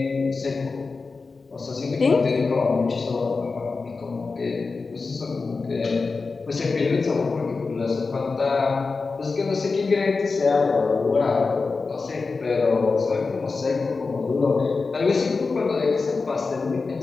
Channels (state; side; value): quieter; right; 4.2 dB